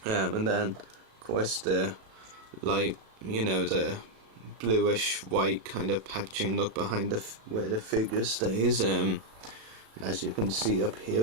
And then of course the light, the bluish white kind of packaging look behind where the figure stays. As you can see up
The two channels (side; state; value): left; late; 36 ms